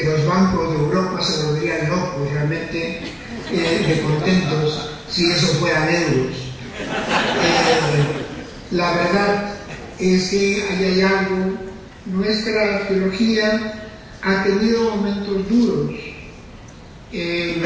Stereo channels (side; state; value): both; identical; correlation 1.00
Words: los bancos de Europa se volverían locos realmente de contentos si eso fueran euros. La verdad es que ahí hay algo. Nuestra teología ha tenido momentos duros.